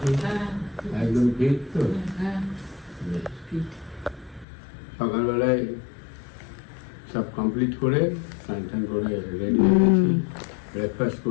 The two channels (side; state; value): right; drops out; at 4.5 s